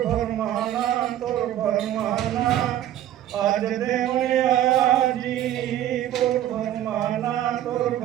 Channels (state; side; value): quieter; left; 12.2 dB